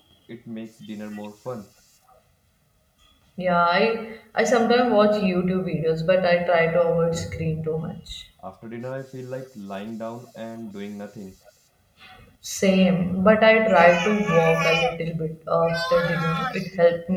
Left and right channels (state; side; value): identical; both; correlation 1.00